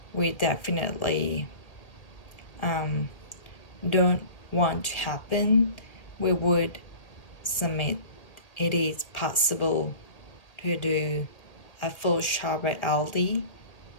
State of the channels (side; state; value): right; late; 1.7 ms